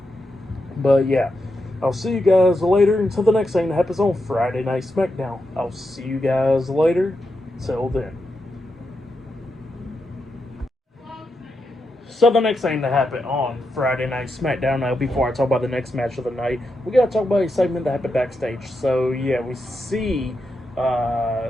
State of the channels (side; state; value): both; normal; correlation 0.85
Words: But yeah, I'll see you guys later until the next thing that happens on Friday Night SmackDown. I'll see you guys later. Till then. So the next thing that happened on Friday Night SmackDown, now before I talk about the next match of the night, we gotta talk about a segment that happened backstage. So yeah, we see